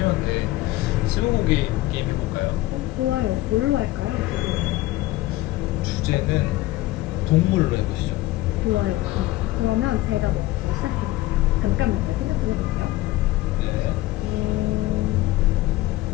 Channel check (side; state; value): right; quieter; 17.5 dB